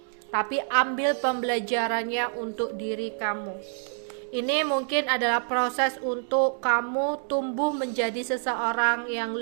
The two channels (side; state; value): left; silent; digital silence